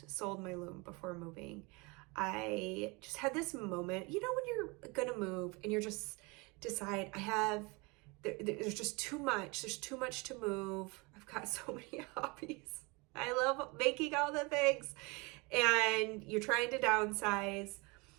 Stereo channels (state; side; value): quieter; left; 27.5 dB